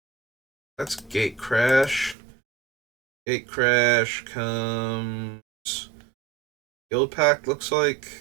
That's Gate Crash. Gate Crash comes Guild Pact, looks like.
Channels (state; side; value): drops out; left; at 2.1 s